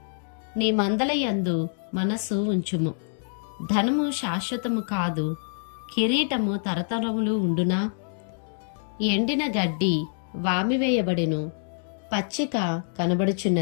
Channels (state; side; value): silent; right; digital silence